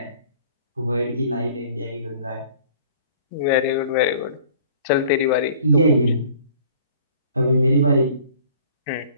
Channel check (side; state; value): both; inverted; correlation -0.51